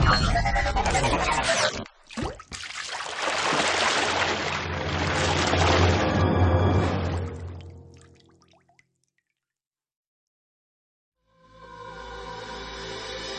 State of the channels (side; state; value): both; identical; correlation 1.00